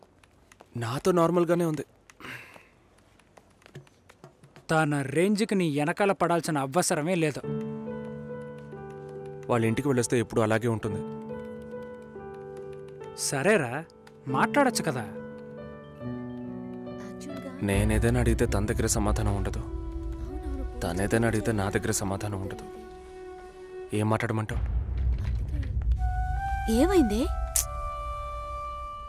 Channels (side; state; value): both; identical; correlation 1.00